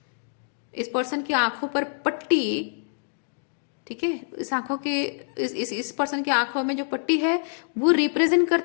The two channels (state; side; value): silent; right; digital silence